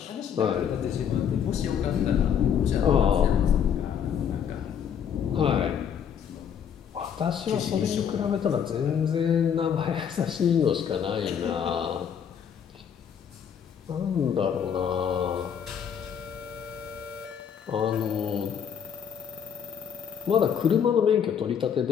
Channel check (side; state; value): right; quieter; 8.1 dB